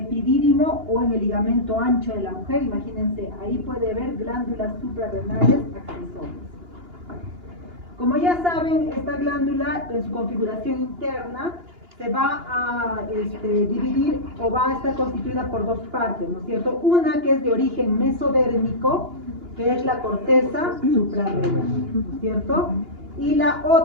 o en el ligamento ancho de la mujer. Imagínense, ahí puede haber glándulas suprarrenales accesorias. Como ya saben, esta glándula en su configuración interna se va a dividir o va a estar constituida por dos partes, ¿no es cierto? Una que es de origen mesodérmico, que es la corteza suprarrenal, ¿no es cierto? Y la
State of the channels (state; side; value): late; left; 2.9 ms